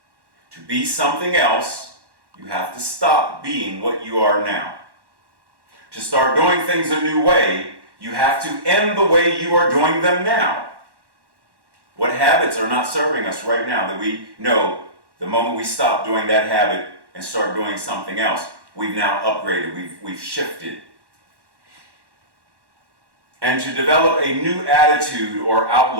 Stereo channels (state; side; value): late; left; 1.1 ms